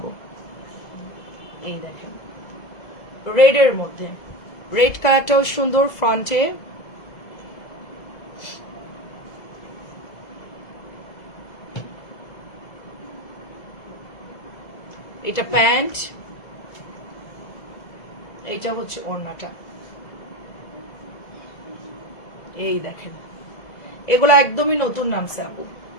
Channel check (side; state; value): right; late; 2.0 ms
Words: এই দেখেন রেড এর মধ্যে, রেড কালারটাও সুন্দর ফ্রন্টে, এটা প্যান্ট, এটা হচ্ছে ওড়নাটা। এই দেখেন এগুলো একদমই নতুন নামছে আপু,